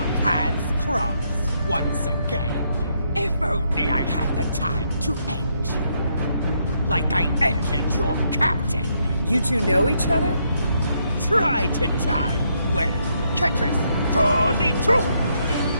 paths cross once again. If only I had the time to end you. Like I ended your captain. You two know each other? Try to die. Well, Ketris, draw thee to!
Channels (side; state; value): both; inverted; correlation -0.75